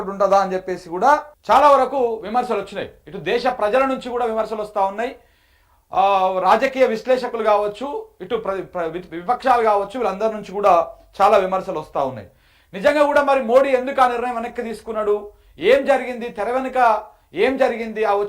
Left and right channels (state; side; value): identical; both; correlation 1.00